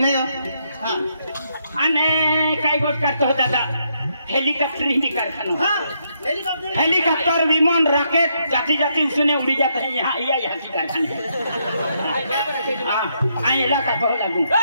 हो हाँ अने काय गोट का तो दादा हेलीकॉप्टर ही कारखाना हाँ हेलीकॉप्टर विमान रॉकेट जाती जाती उसने उड़ी जाते हैं यहाँ यहाँ की कारखाने हाँ इलाका बहुत लागू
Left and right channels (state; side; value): inverted; both; correlation -0.76